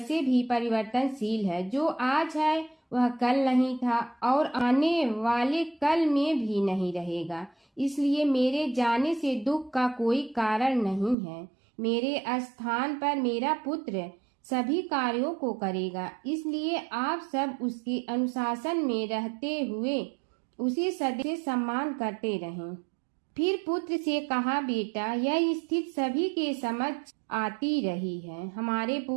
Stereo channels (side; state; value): left; drops out; at 11.2 s